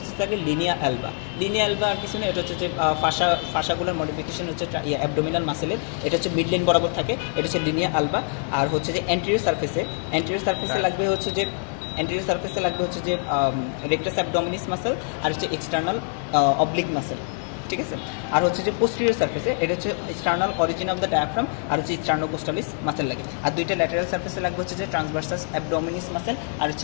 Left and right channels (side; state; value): right; silent; 55 dB below the other